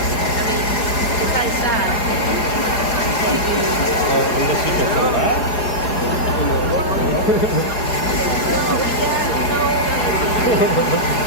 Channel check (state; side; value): late; right; 4.8 ms